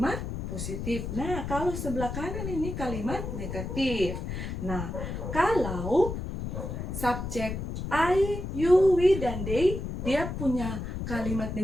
positif. Nah, kalau sebelah kanan ini kalimat negatif. Nah, kalau subjek I, you, we, dan they, dia punya kalimat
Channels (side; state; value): left; noise; rumble, 5 dB below the sound